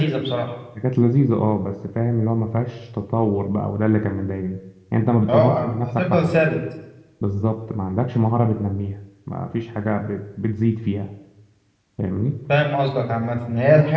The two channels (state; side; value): identical; both; correlation 1.00